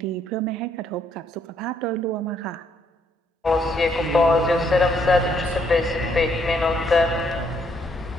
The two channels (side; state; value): both; normal; correlation 0.71